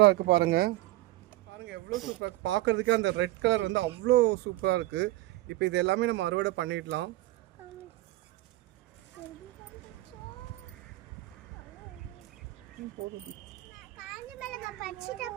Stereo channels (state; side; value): quieter; left; 17.5 dB